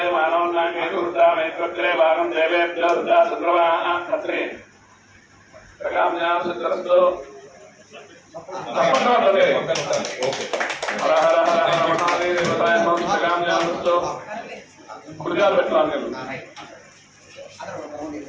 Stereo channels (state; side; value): identical; both; correlation 1.00